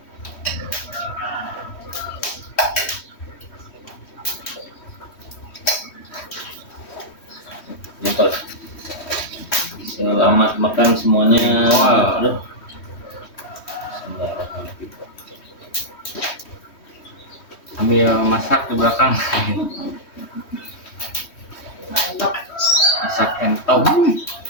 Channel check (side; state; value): right; late; 3.1 ms